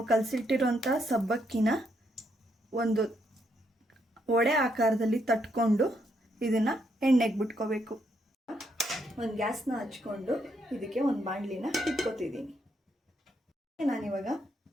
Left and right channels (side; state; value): both; normal; correlation 0.76